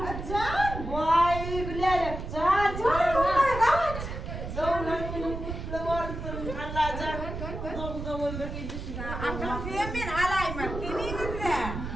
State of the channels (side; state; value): right; noise; rumble, 6 dB below the sound